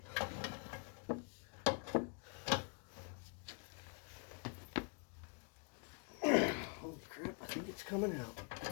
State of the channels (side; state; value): right; quieter; 37.2 dB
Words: Holy crap, I think it's coming out.